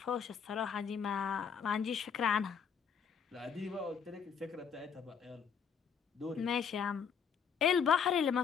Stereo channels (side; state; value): right; quieter; 6.9 dB